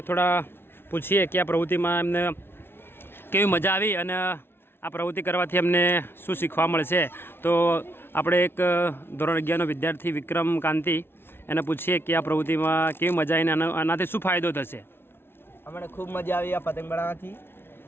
થોડા પૂછીએ કે આ પ્રવૃત્તિમાં એમને કેવી મજા આવી અને આ પ્રવૃત્તિ કરવાથી અમને શું શીખવા મળશે. તો આપણે એક ધોરણ 11નો વિદ્યાર્થી વિક્રમ કાંતિ, એને પૂછીએ કે આ પ્રવૃત્તિમાં કેવી મજા આવીને આનાથી શું ફાયદો થશે. અમને ખૂબ મજા આવી આ પતંગ બનાવવાથી.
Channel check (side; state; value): right; late; 0.11 ms